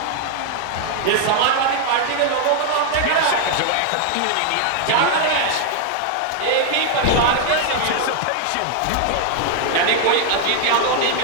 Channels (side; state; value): both; different; correlation 0.00